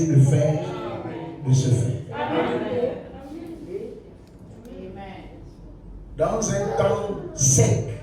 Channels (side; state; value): both; identical; correlation 1.00